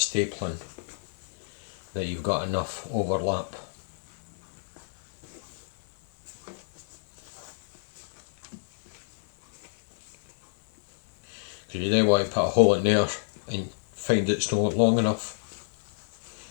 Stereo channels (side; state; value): right; silent; 59 dB below the other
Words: that you've got enough overlap. Because you don't want to put a hole in there and find it's not long enough.